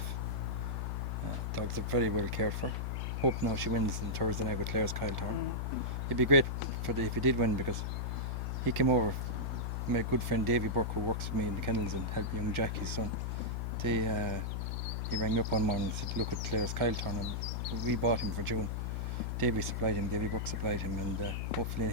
Dogs are very well cared for. Hope now she wins on Thursday night with Claire's Kyle Tower. It'd be great if he did win, because he came over. My good friend Davy Burke, who works with me in the kennels and helped young Jack, his son, he rang me up one morning and said, look at Claire's Kyle turn, and we bought him for June. Davy Burke supplied him, and hopefully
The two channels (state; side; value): noise; left; hum, 1 dB below the sound